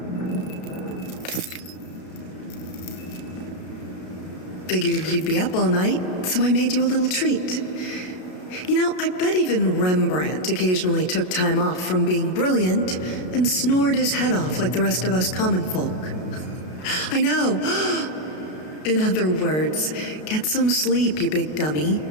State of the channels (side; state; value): right; late; 33 ms